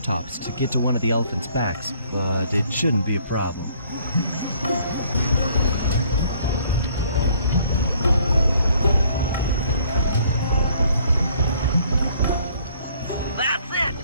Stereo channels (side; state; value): both; inverted; correlation -0.61